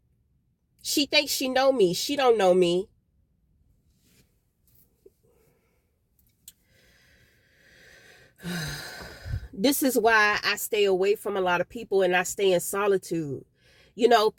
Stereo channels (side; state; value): both; identical; correlation 1.00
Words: She thinks she know me. She don't know me. This is why I stay away from a lot of people and I stay in solitude. You know,